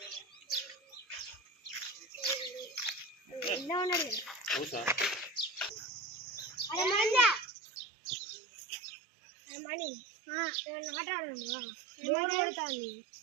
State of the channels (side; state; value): left; drops out; at 7.5 s